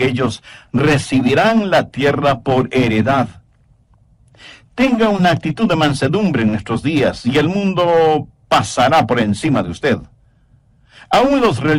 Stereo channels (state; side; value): identical; both; correlation 1.00